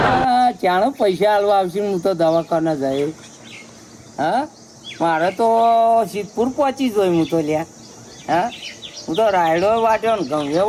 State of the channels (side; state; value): both; identical; correlation 1.00